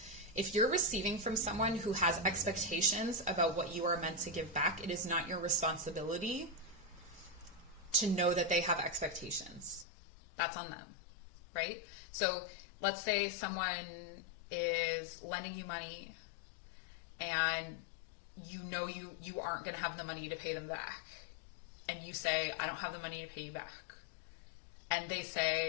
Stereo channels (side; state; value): right; drops out; at 9.9 s